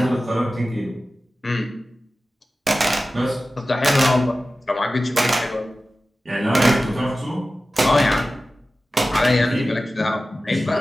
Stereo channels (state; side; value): normal; both; correlation 0.95